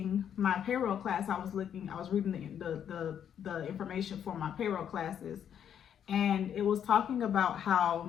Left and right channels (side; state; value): right; quieter; 9.0 dB